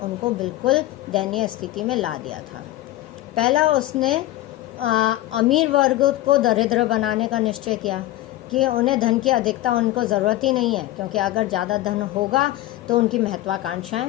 उनको बिल्कुल दयनीय स्थिति में ला दिया था। पहला, उसने अमीर वर्ग को दरिद्र बनाने का निश्चय किया कि उन्हें धन की अधिकता उनको ज़रूरत ही नहीं है, क्योंकि अगर ज़्यादा धन होगा तो उनकी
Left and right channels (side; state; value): right; quieter; 15.9 dB